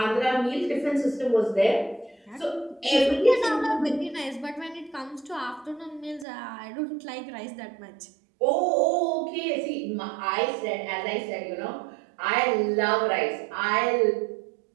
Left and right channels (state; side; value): drops out; left; at 6.2 s